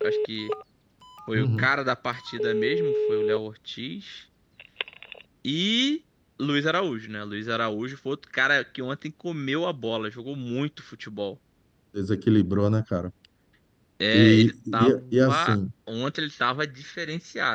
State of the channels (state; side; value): identical; both; correlation 1.00